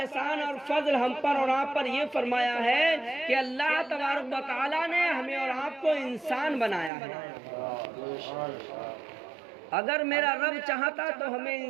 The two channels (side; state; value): left; drops out; at 6.9 s